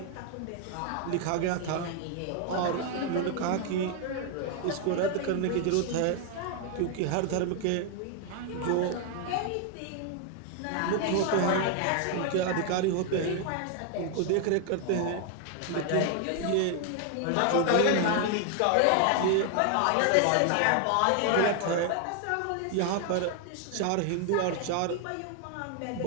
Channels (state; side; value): different; both; correlation 0.00